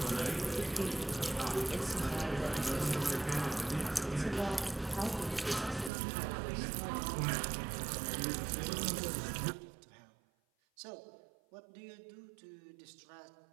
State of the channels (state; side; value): drops out; left; at 5.9 s